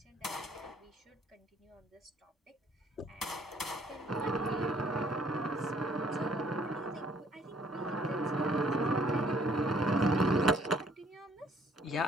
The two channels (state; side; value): normal; both; correlation 0.62